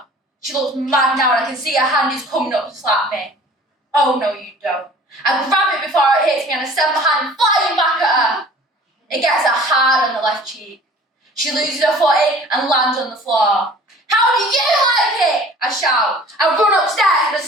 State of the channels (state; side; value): normal; both; correlation 0.48